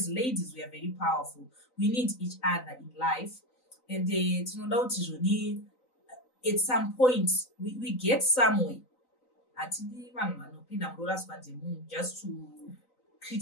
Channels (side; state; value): right; late; 3.9 ms